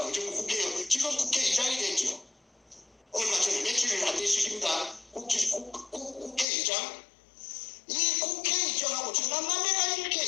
의정부 국회의원, 지금 국회의장이 됐죠. 얼마 전에 며칠 안 됐습니다. 국회의장. 이 국회의장하고 전남남매가 이렇게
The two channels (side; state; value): right; drops out; at 6.5 s